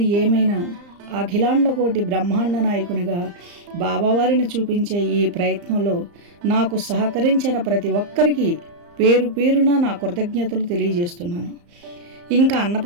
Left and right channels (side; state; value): left; late; 35 ms